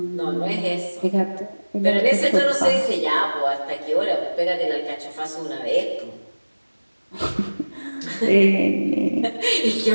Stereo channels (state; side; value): inverted; both; correlation -1.00